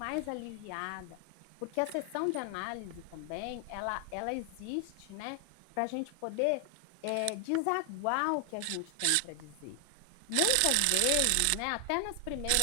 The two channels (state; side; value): different; both; correlation 0.00